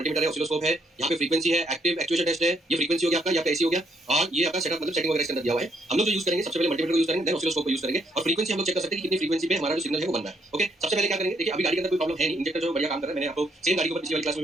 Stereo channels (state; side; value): normal; both; correlation 0.73